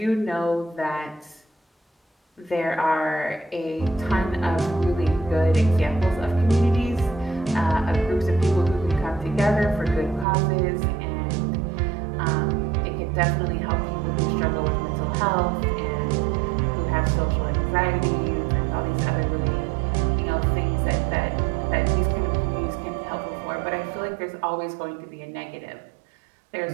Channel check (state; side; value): drops out; left; at 10.2 s